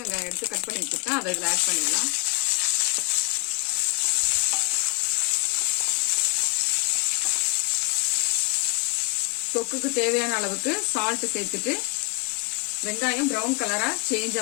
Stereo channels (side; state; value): right; quieter; 31.3 dB